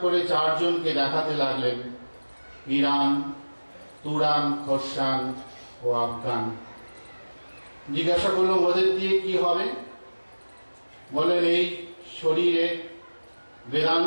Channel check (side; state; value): both; inverted; correlation -1.00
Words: করে 4 জনকে দেখাতে লাগলেন, ইরান, তুরান, খোরসান ও আফগান। জিজ্ঞাসা করলাম, ওদের দিয়ে কি হবে? বলেন, এই শরীরে